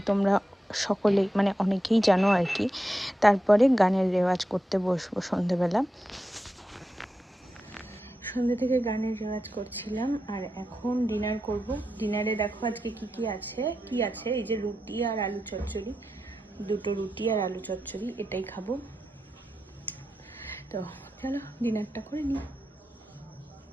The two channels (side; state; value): both; normal; correlation 0.88